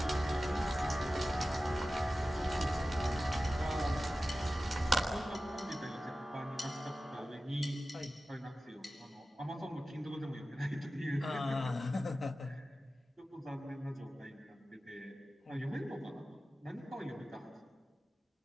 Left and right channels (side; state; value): both; normal; correlation 0.95